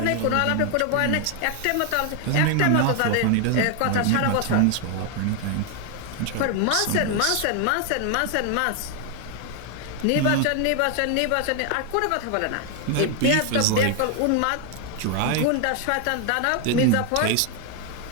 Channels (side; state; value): both; different; correlation 0.01